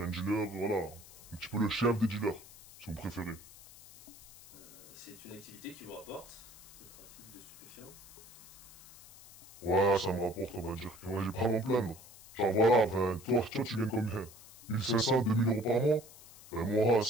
un dealer, voilà, un petit peu le chef des dealers, si vous préférez. C'est une activité qui vous rapporte, le trafic de stupéfiants? Ouais, ça me rapporte, on va dire que j'ai pas à m'en plaindre. Genre voilà, toi tu gagnes combien? 1500, 2000 euros par mois? Moi,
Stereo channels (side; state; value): left; noise; hiss, 20 dB below the sound